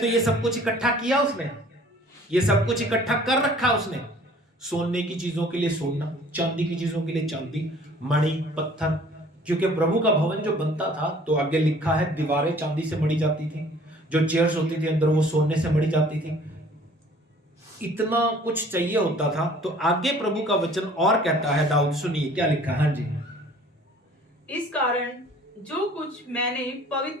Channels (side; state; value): both; normal; correlation 0.52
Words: ये सब कुछ इकट्ठा किया उसने, ये सब कुछ इकट्ठा कर रखा उसने। सोने की चीजों के लिए सोना, चांदी की चीजों के लिए चांदी, मणि, पत्थर। क्योंकि प्रभु का भवन जो बनता था तो आगे लिखा है दीवारें चांदी से मढ़ी जाती थी, जो चेयर्स होती थी अंदर वो सोने से मढ़ी जाती थी। इतना कुछ चाहिए होता था। तो आगे प्रभु का वचन और कहता है, दाऊद सुनिए क्या लिखा। हाँ जी। इस कारण जो कुछ मैंने